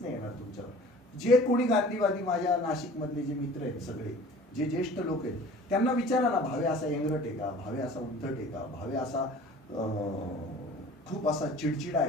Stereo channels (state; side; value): normal; both; correlation 0.45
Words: नाही येणार तुमच्यावर. जे कोणी गांधीवादी माझ्या नाशिक मधले जे मित्र आहेत, सगळे जे ज्येष्ठ लोक आहेत, त्यांना विचारा ना, भावे असा एंगरट आहे का? भावे असा उद्धट आहे का? भावे असा खूप असा चिडचिडा